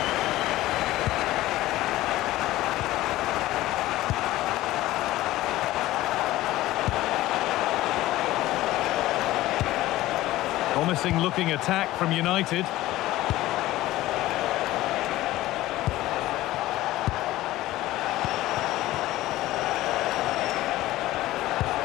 Promising looking attack from United.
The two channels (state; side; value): quieter; right; 16.4 dB